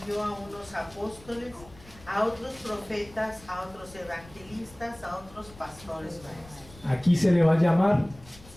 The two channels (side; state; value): left; noise; rumble, 21 dB below the sound